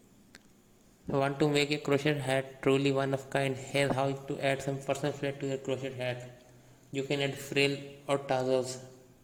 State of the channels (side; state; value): both; identical; correlation 1.00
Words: Want to make a crochet hat truly one of kind? Here's how to add some personal flair to your crochet hat. You can add frill or tassels